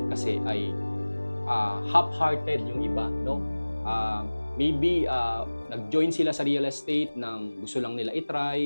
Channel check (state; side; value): inverted; both; correlation -1.00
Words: kasi ay half-hearted yung iba, no? Maybe nag-join sila sa real estate nang gusto lang nila